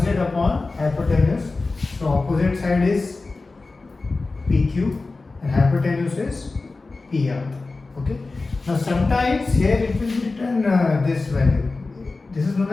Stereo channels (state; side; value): quieter; right; 3.6 dB